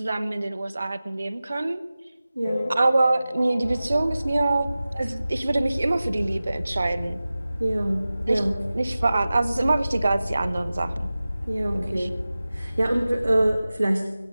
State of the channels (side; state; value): both; inverted; correlation -0.96